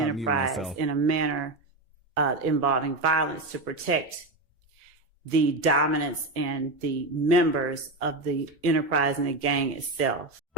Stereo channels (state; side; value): normal; both; correlation 0.15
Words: in a manner involving violence to protect the dominance and the members of the enterprise and the gang itself.